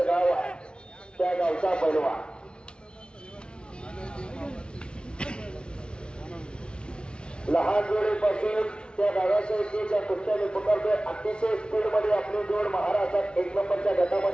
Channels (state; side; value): late; right; 0.056 ms